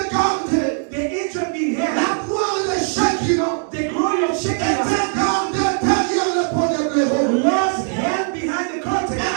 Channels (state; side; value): silent; left; 55 dB below the other